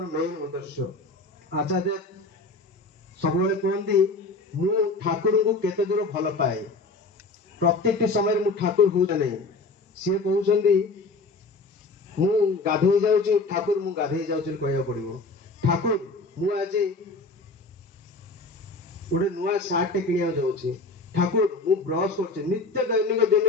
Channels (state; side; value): quieter; right; 3.4 dB